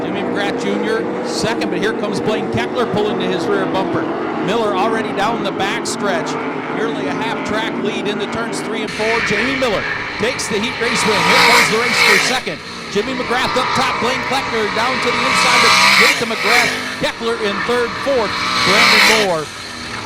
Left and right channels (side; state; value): both; identical; correlation 1.00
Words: Jimmy McGrath Jr. 2nd, but here comes Blaine Keckler pulling to his rear bumper. Miller already down the backstretch. Nearly a half-track lead into turns 3 and 4. Jamie Miller takes the heat race win. Here comes the race for 2nd. Jimmy McGrath up top. Blaine Keckler down to the inside, but get it to McGrath. Keckler in 3rd, 4th. Brandon Moore